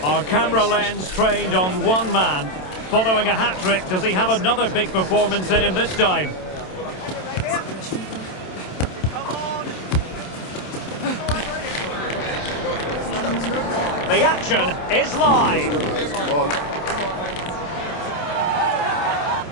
Our camera lens trained on one man. Following a hat-trick, does he have another big performance in him this time? The action is live.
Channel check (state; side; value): late; right; 27 ms